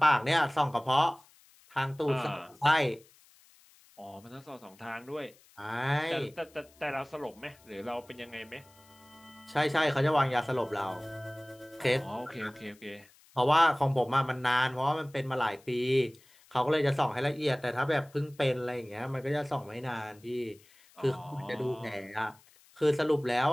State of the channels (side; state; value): left; noise; hiss, 28 dB below the sound